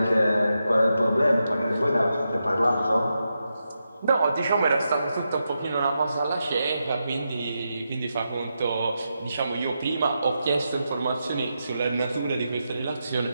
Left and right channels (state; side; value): inverted; both; correlation -0.86